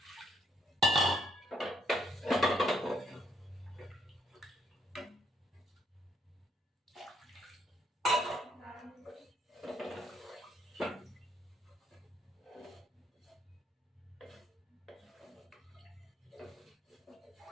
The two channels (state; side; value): normal; both; correlation 0.71